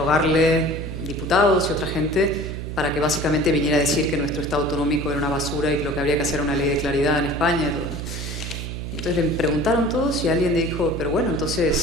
diputados y otra gente, para que básicamente viniera a decir que nuestro Estado autonómico era una basura y que lo que habría que hacer era una ley de claridad en España y todo. Entonces le preguntaron todos y alguien le dijo, pero bueno,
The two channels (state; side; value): noise; right; hum, 6 dB below the sound